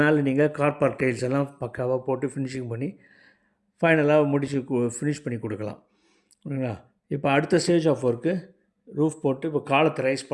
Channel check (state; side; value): identical; both; correlation 1.00